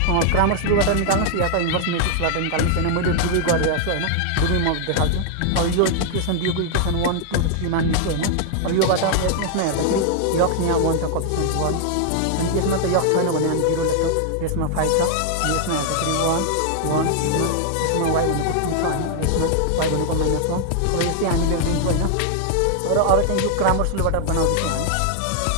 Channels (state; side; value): different; both; correlation 0.00